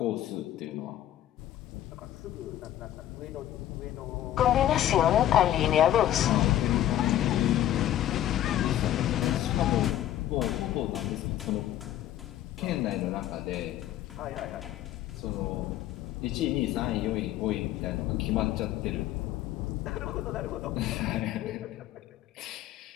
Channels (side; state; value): right; quieter; 12.6 dB